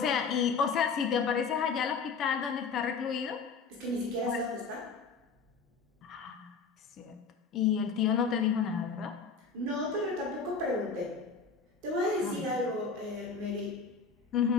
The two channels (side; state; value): right; quieter; 5.1 dB